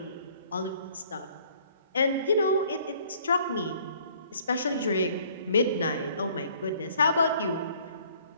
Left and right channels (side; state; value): both; inverted; correlation -0.58